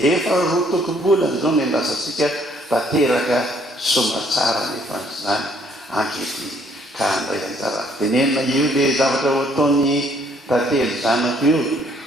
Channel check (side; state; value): both; normal; correlation 0.64